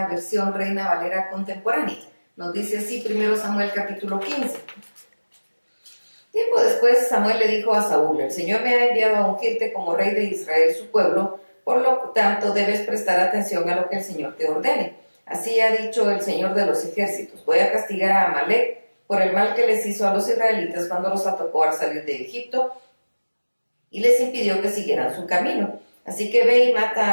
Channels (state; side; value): inverted; both; correlation -1.00